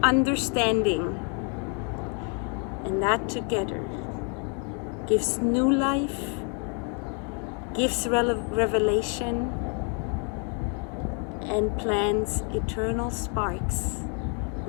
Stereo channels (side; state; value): right; quieter; 35.9 dB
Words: understanding. And that together gives new life, gives revelation, and plants eternal sparks,